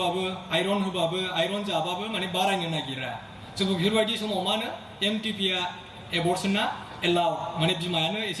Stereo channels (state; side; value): identical; both; correlation 1.00